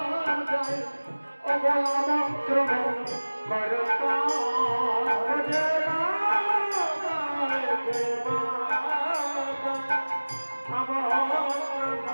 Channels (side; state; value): both; inverted; correlation -1.00